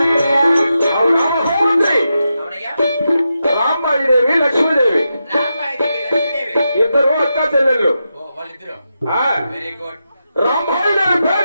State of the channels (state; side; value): inverted; both; correlation -0.87